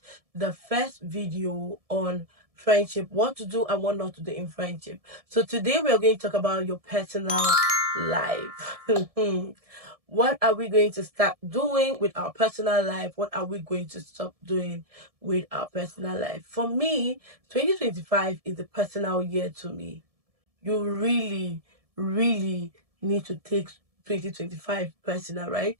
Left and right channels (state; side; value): late; left; 1.7 ms